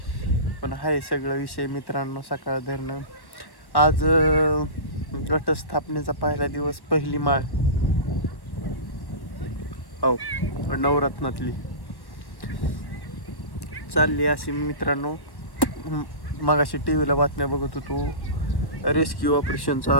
पण आहे सगळं विषय मित्रांनो. सकाळ धरणं आज घटस्थापनेचा पहिला दिवस. पहिली माळ हो नवरत्नातली चालली अशी मित्रांनो. मगाशी टीव्हीला बातम्या बघत होतो. रेस्क्यू ऑपरेशन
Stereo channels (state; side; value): late; right; 1.1 ms